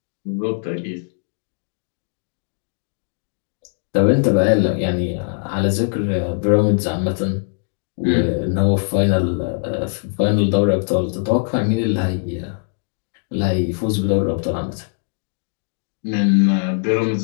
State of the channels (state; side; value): silent; right; digital silence